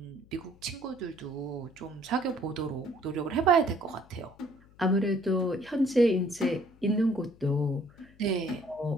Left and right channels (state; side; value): noise; left; hum, 26 dB below the sound